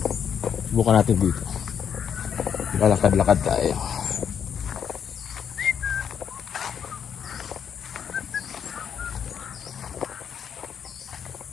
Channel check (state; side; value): quieter; right; 7.9 dB